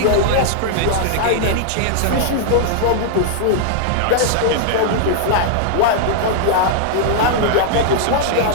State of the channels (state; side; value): different; both; correlation -0.01